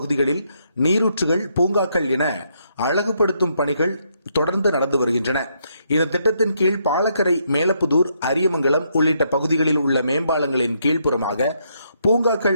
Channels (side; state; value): both; inverted; correlation -0.75